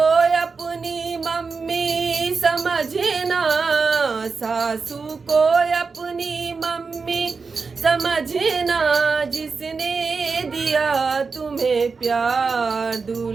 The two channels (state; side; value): quieter; left; 4.8 dB